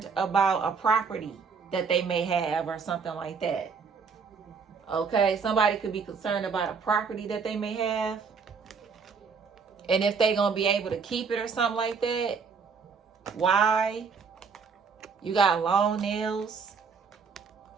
about a property that they may have or something like that. Okay, somebody could be concerned about a property that they may have. And if they're going to be able to keep it or something like that. Why? You got long nails.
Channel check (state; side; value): quieter; left; 5.5 dB